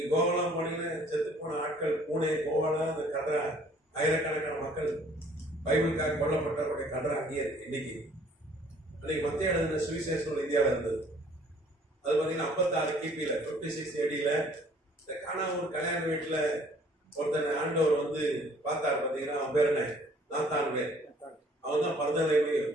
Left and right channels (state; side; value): normal; both; correlation 0.57